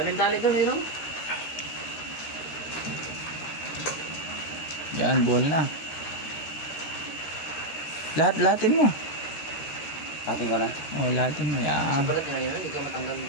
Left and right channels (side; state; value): right; late; 13 ms